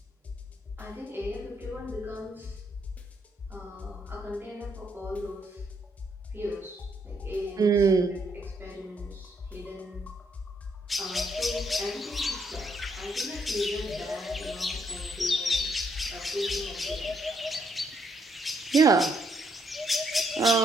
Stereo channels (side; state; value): both; normal; correlation 0.74